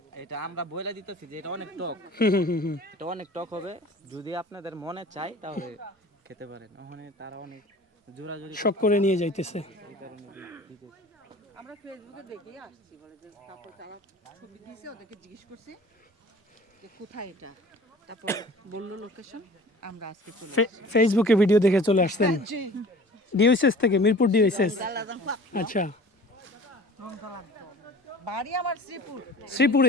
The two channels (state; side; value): normal; both; correlation 0.44